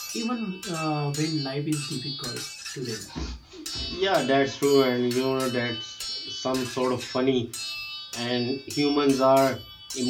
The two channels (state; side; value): identical; both; correlation 1.00